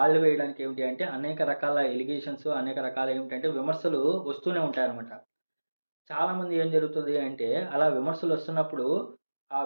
వేయడానికి ఏమిటి అంటే అనేక రకాల ఎలిగేషన్స్, అనేక రకాల ఏమిటంటే విమర్శలు వస్తూనే ఉంటాయన్నమాట. చాలామంది ఏం జరుగుతుంది అంటే అలా విమర్శలు వస్తున్నప్పుడు ఆ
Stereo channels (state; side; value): inverted; both; correlation -1.00